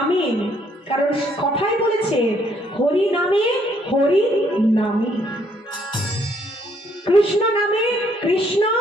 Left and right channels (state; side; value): normal; both; correlation 0.68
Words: কারণ কথাই বলেছে হরি নামে হরি নামে, কৃষ্ণ নামে কৃষ্ণ